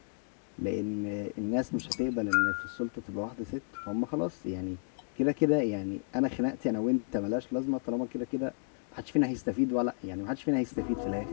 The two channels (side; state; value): right; silent; digital silence